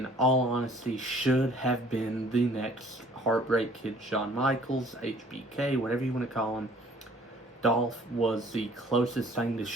all honesty, should have been the next Heartbreak Kid Shawn Michaels, HBK, whatever you want to call him. Dolph was the closest thing to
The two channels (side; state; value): both; normal; correlation 0.55